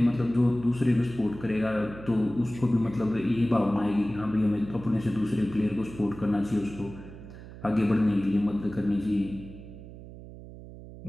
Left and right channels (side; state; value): right; noise; hum, 15 dB below the sound